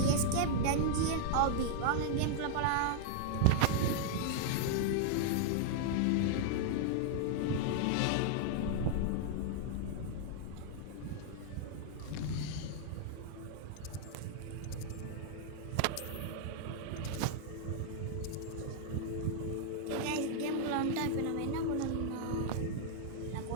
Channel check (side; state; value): both; different; correlation -0.01